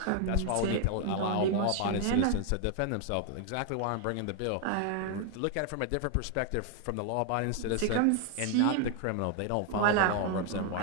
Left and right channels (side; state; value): both; different; correlation 0.00